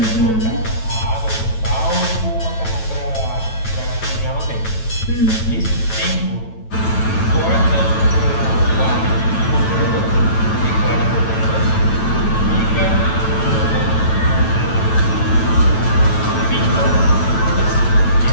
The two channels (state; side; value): late; right; 9.1 ms